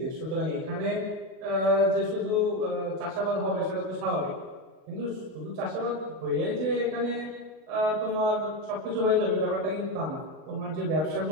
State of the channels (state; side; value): late; left; 38 ms